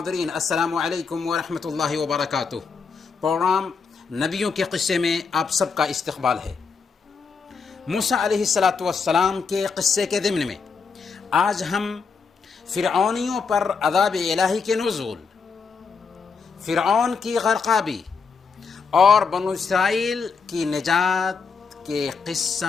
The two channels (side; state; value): right; quieter; 5.3 dB